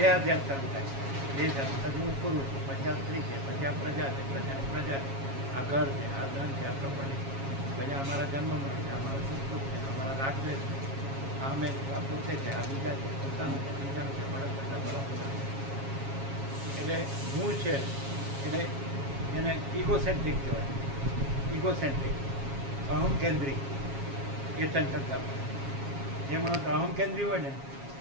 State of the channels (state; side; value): late; left; 7.3 ms